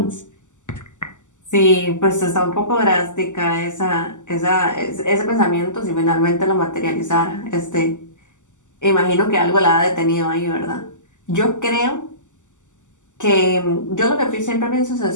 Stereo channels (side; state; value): right; late; 0.85 ms